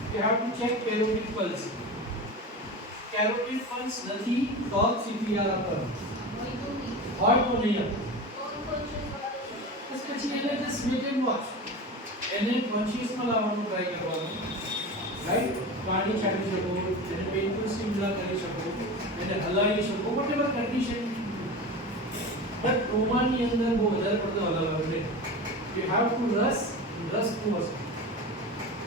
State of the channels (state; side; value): normal; both; correlation 0.28